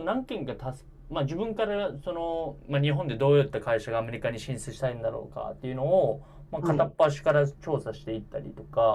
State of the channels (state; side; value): identical; both; correlation 1.00